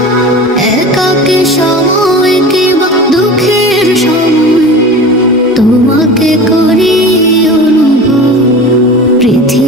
একাকী সময় কিংবা দুঃখের সময় তোমাকে করি অনুভব।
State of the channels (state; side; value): normal; both; correlation 0.35